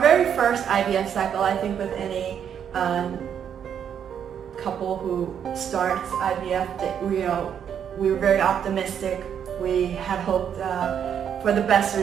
first IVF cycle, I think with any couple who starts IVF, we were very optimistic. We had hoped for the best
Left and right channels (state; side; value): quieter; left; 8.4 dB